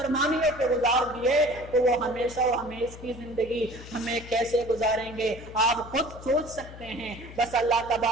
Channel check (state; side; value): noise; left; hum, 15 dB below the sound